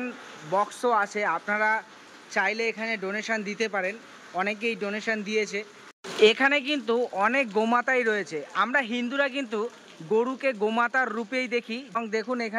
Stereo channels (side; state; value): both; identical; correlation 1.00